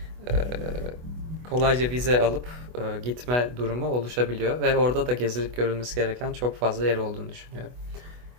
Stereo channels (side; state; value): left; late; 24 ms